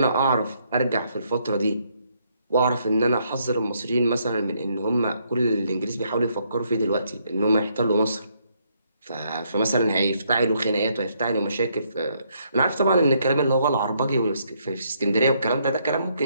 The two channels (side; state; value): both; inverted; correlation -0.73